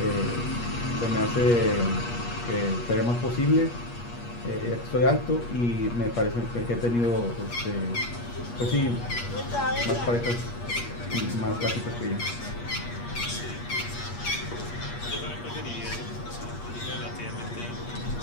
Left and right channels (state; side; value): late; right; 8.4 ms